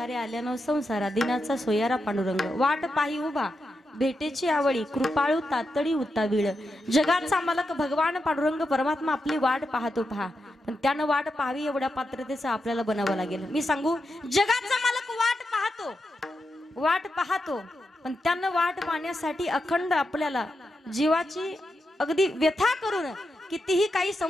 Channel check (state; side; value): normal; both; correlation 0.87